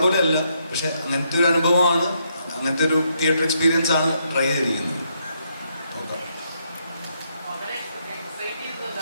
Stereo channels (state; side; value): inverted; both; correlation -0.76